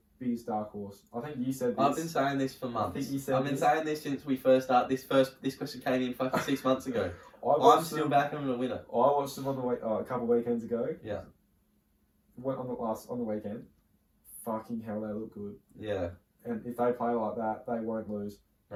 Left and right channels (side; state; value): both; identical; correlation 1.00